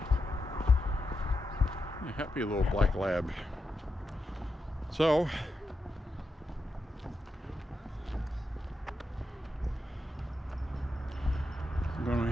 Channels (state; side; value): normal; both; correlation 0.87